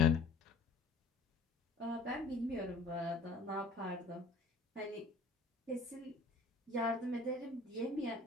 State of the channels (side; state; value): right; quieter; 3.5 dB